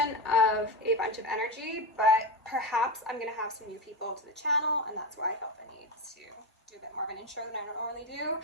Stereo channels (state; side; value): normal; both; correlation 0.16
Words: of a bunch of energy, but perhaps I'm going to have some new people to the channel, and that's why I felt the need to do a bit more of an intro than I normally do.